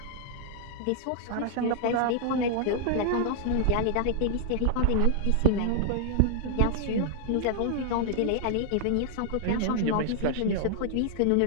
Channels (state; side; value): different; both; correlation -0.01